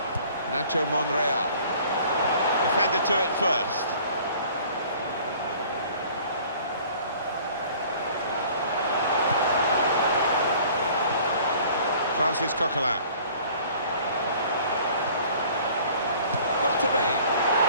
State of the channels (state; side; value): inverted; both; correlation -0.51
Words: Nacho Monreal. Defender to it first. Francis Coquelin. Got to be.